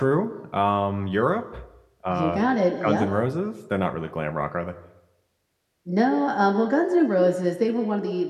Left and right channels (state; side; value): identical; both; correlation 1.00